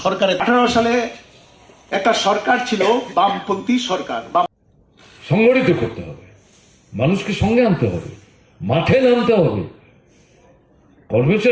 সরকারের 18 সালে একটা সরকার ছিল বামপন্থী সরকার। সংগঠিত করতে হবে, মানুষকে সঙ্গে আনতে হবে, মাঠে নামতে হবে।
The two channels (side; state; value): both; identical; correlation 1.00